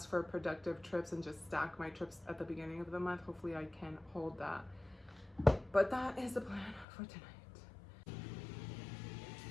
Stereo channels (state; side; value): drops out; right; at 6.9 s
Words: for productive trips and just stack my trips at the beginning of the month, hopefully I can hold that. But that is the plan for tonight.